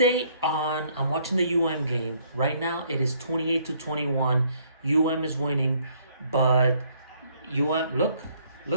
on, I'm watching the UM game. Right now, it is 28-21. UM is winning, but UM, look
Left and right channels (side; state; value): both; inverted; correlation -0.66